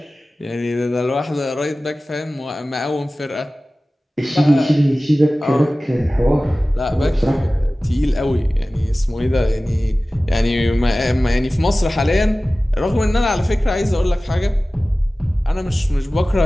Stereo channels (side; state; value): both; normal; correlation 0.97